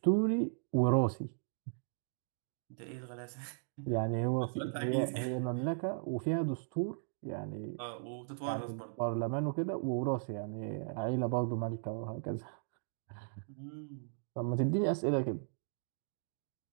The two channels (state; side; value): silent; left; digital silence